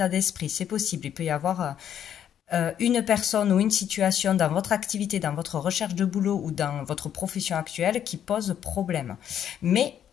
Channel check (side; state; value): right; quieter; 9.7 dB